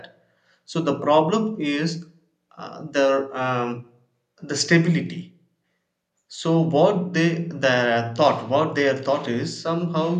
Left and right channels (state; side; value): identical; both; correlation 1.00